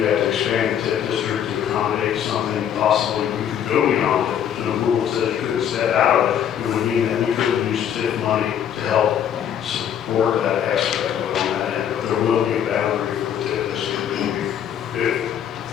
have to expand the TIF district to accommodate something possibly we could go beyond it. There's no rule that says you couldn't step out of it. It would mean that we could use TIF money to help support that aspect of it on that end. But there will be a boundary for the TIF district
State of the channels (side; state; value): right; quieter; 9.3 dB